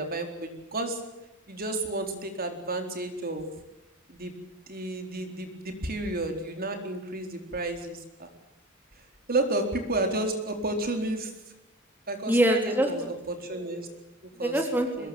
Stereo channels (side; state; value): both; normal; correlation 0.33